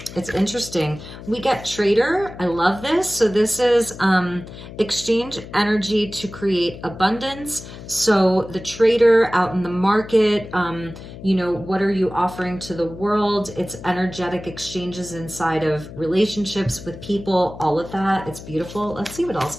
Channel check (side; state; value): left; noise; hum, 14 dB below the sound